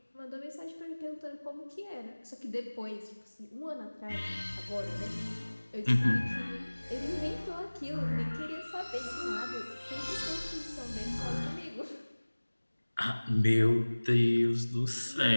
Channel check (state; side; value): inverted; both; correlation -1.00